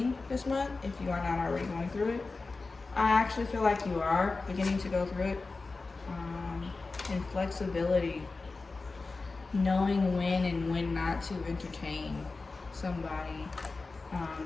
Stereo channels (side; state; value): right; quieter; 3.8 dB